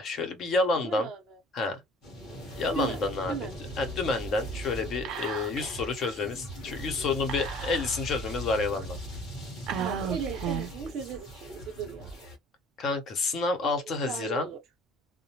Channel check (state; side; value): normal; both; correlation 0.50